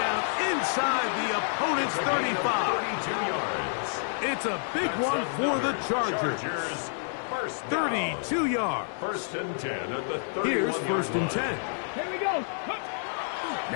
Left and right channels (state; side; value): silent; right; digital silence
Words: inside the opponent's 35. 32 yards. It's a big one for the Chargers. 32 yards. 1st and 10 at the 31. Here's 1st and 10. Here we go.